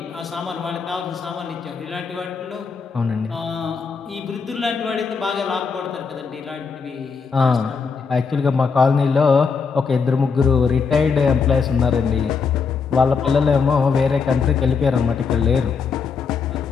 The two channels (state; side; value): quieter; right; 5.4 dB